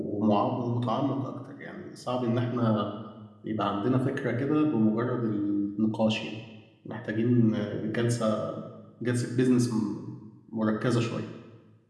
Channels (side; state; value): both; identical; correlation 1.00